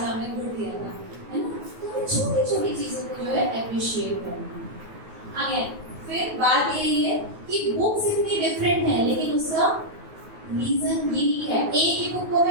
आपने गुड दिया था, है ना। तो छोटी छोटी चीजों को जो है अप्रिशिएट करना। आगे फिर बात यही है कि बुक्स इतनी डिफरेंट है लेकिन उसका रीजन यही है, एक ही बुक को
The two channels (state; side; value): late; left; 9.3 ms